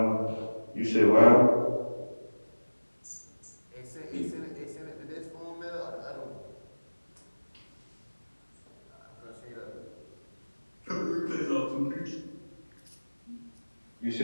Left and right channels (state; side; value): inverted; both; correlation -1.00